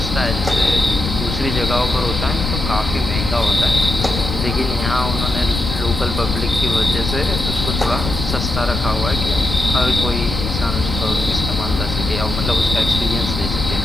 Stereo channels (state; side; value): noise; left; rumble, 4 dB below the sound